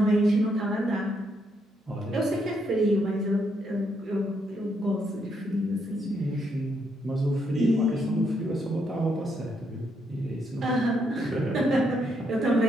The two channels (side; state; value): both; normal; correlation 0.76